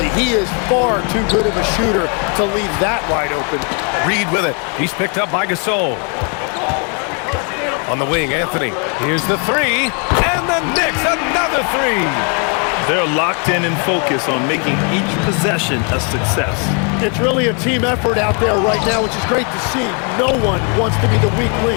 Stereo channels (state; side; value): quieter; right; 38.0 dB